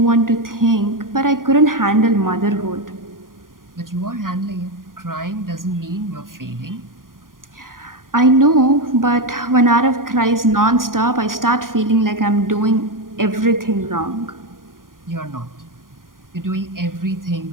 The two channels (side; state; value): left; late; 0.90 ms